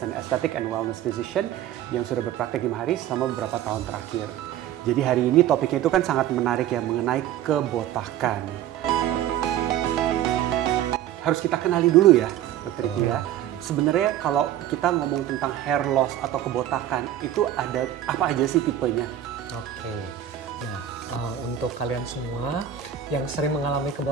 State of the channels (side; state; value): left; quieter; 11.2 dB